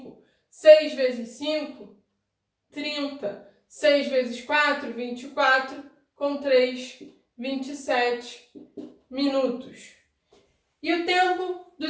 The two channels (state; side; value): identical; both; correlation 1.00